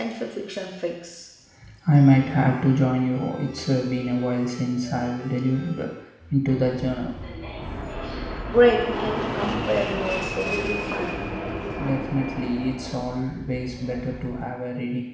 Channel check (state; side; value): identical; both; correlation 1.00